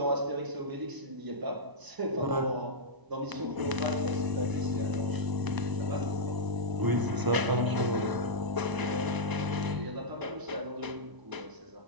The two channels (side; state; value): left; late; 1.0 ms